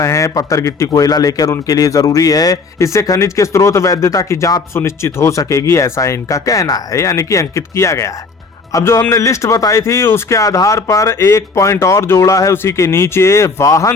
हैं पत्थर, गिट्टी, कोयला लेकर उनके लिए जरूरी है। इससे खनिज के स्रोत वैधता की जांच सुनिश्चित हो सकेगी, ऐसा इनका कहना है, यानी कि अंकित किया गया है। अब जो हमने लिस्ट बताई थी उसके आधार पर एक पॉइंट और जोड़ा है उसी के नीचे, वाहन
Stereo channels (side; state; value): right; quieter; 4.3 dB